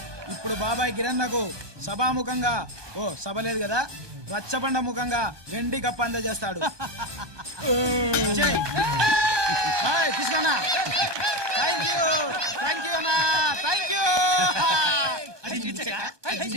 ఇప్పుడు బాబాయ్ గిరన్నకు సభాముఖంగా సభ లేదు కదా, రచ్చబండ ముఖంగా వెండి కప్ప అందజేస్తాడు. తీసుకున్నా. థ్యాంక్ యూ అన్నా, థ్యాంక్ యూ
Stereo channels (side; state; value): left; late; 1.2 ms